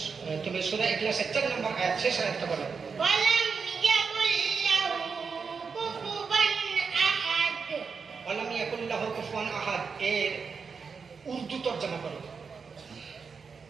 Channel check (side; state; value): left; quieter; 5.4 dB